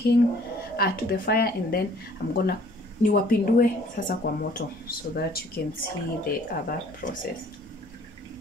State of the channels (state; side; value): normal; both; correlation 0.56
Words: to the fire, and then I'm gonna niwapindue sasa kwa moto so that you can see the other process.